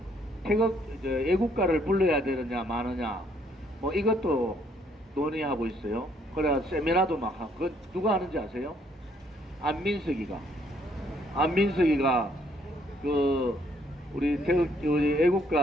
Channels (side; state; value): both; normal; correlation 0.67